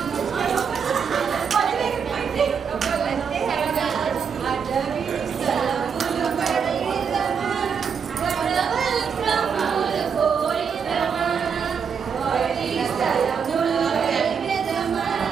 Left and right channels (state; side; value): quieter; left; 6.6 dB